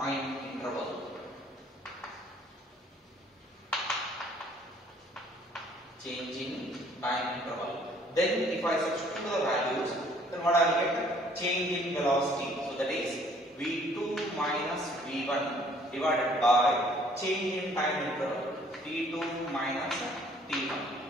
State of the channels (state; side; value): normal; both; correlation 0.59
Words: interval. Then if I substitute the values, then what I will get? Change in velocity. So that is v2 minus v1 divided by change in time interval t2 minus t1.